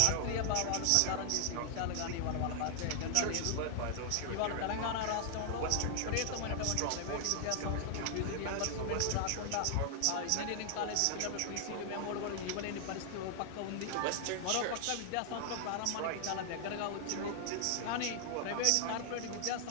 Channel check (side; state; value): both; different; correlation 0.00